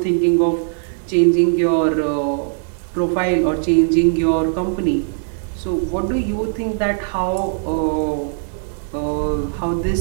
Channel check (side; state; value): left; silent; 66 dB below the other